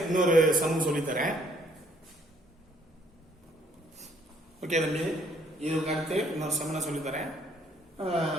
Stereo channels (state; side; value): normal; both; correlation 0.64